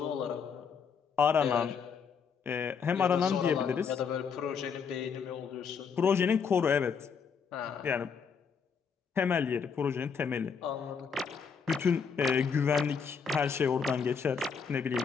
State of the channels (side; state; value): right; quieter; 6.2 dB